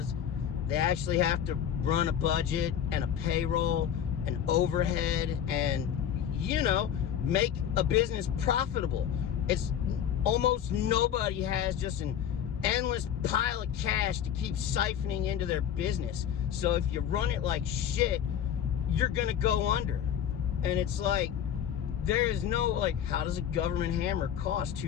they actually have to run a budget and a payroll and overhead and, you know, make a business profitable. It's almost nobody has just an endless pile of cash to keep siphoning into their business. So if you run it like shit, you're gonna go under. And it's like, there is no, like, how does a government hammer cost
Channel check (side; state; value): right; quieter; 9.3 dB